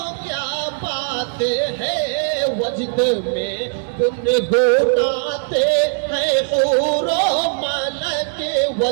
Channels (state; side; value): silent; left; digital silence